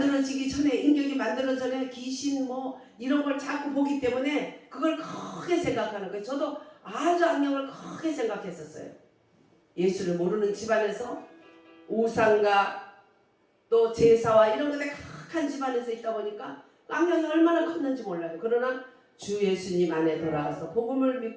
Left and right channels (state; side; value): identical; both; correlation 1.00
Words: 전에, 인격이 만들어지기 전에 귀신 뭐 이런 걸 자꾸 보기 때문에 그걸 크게 생각하는 거예요. 저도 아주 악령을 크게 생각했었어요. 예수를 모르는 집안에서 우상과 또 제사와 이런 것에 각한 집안에서 있다 보니까 악령이 얼마나 컸는지 몰라요. 그러나 주 예수님 안에 돌아가서 복음을